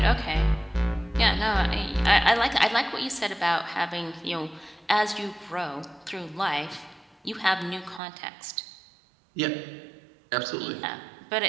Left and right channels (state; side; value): drops out; left; at 8.0 s